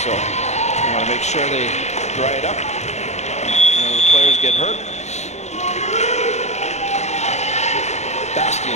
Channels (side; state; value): right; late; 0.33 ms